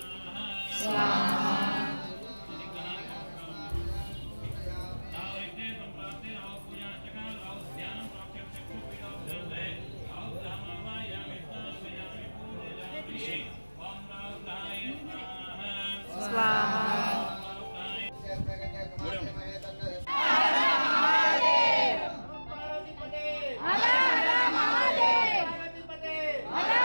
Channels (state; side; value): inverted; both; correlation -1.00